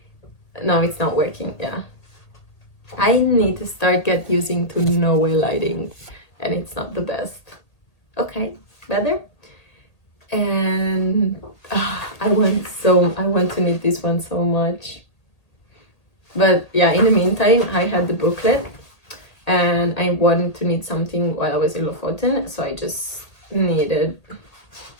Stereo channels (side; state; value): right; late; 1.8 ms